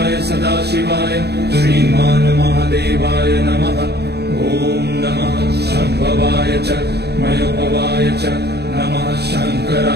सदाशिवाय श्रीमान् महादेवाय नमः ॐ नमः शम्भवाय च मयोपवाय च नमः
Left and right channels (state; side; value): late; left; 0.48 ms